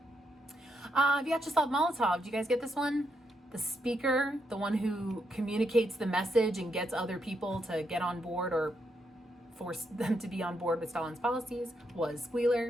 Vyacheslav Molotov, did you guys get this one? The speaker, the one who communicates the message and gets other people to get on board or forced them to be on board with Stalin's policies was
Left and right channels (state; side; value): normal; both; correlation 0.79